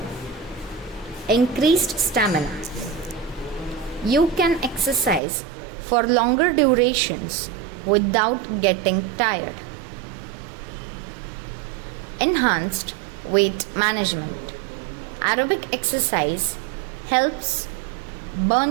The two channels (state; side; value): drops out; left; at 5.2 s